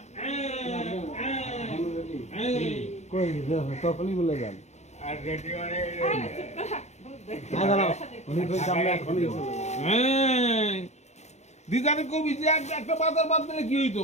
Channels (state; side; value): late; right; 0.33 ms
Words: কই তখনই বলে যান আর রেডি মানে না দাঁড়াও উনি কই আমরা এখনই চলে যাবো দিদারে কবি যে একটা বাজার বাদ দিলে কি হইতো